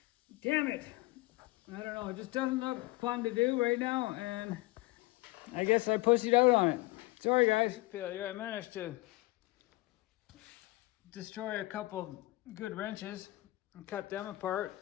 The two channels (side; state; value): right; quieter; 21.0 dB